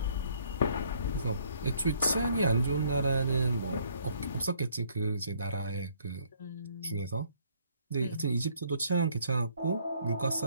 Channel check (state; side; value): inverted; both; correlation -0.64